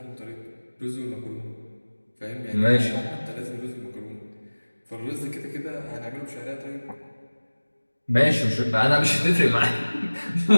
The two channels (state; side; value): inverted; both; correlation -1.00